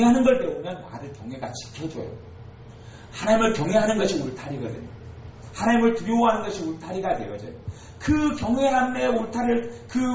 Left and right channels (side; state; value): both; identical; correlation 1.00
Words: 걸 배우면 나를 경외가 지켜줘요. 하나님을 경외하는 것이 울타리거든요. 하나님을 두려워하는 것이 울타리가 되어져요. 그 경외함의 울타리를,